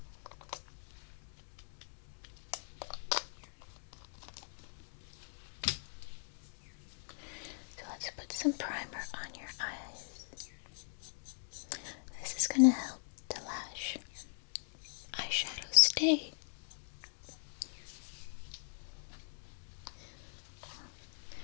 So let's put some primer on your eyes. This is going to help the lash eyeshadow stay.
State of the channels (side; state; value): right; silent; digital silence